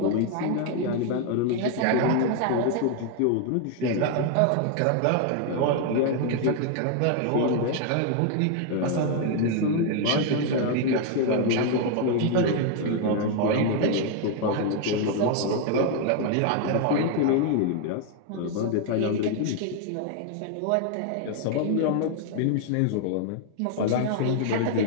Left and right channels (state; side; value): different; both; correlation 0.00